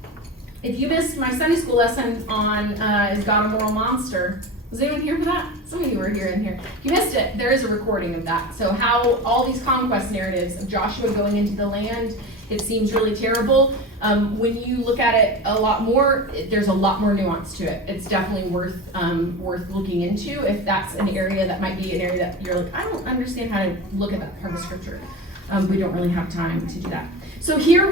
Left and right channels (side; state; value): both; normal; correlation 0.28